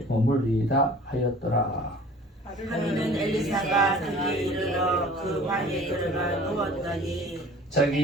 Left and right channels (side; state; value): both; normal; correlation 0.47